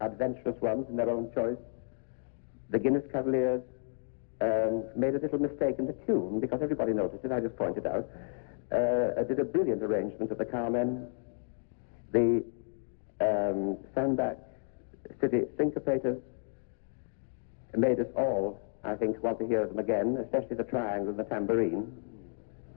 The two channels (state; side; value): silent; right; digital silence